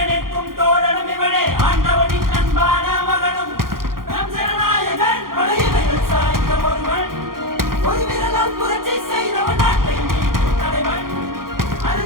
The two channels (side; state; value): left; late; 0.92 ms